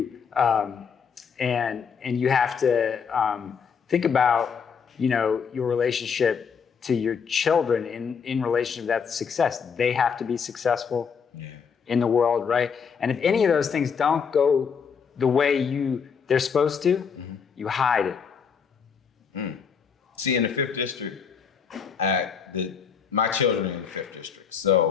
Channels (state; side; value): quieter; right; 6.4 dB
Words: and you have to think about, your relationship to your children in relation to that success. They have to be successful in the world, right? And if any of those things don't go the way they're supposed to, you hide it. See, in the 5th district, my children are in the 5th district.